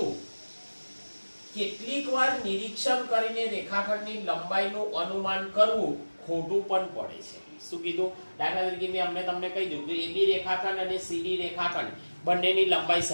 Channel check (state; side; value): inverted; both; correlation -1.00